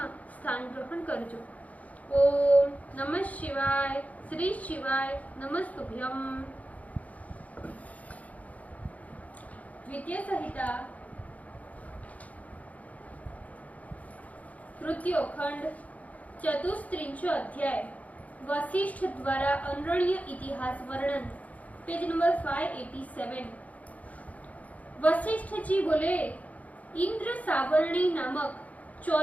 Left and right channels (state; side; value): late; right; 0.071 ms